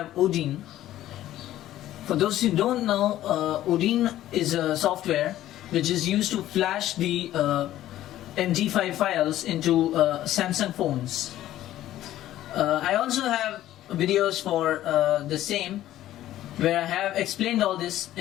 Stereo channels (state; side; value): quieter; right; 13.6 dB